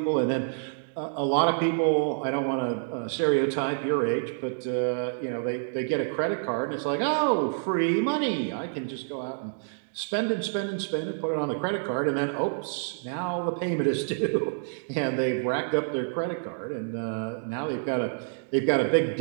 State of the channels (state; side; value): silent; left; digital silence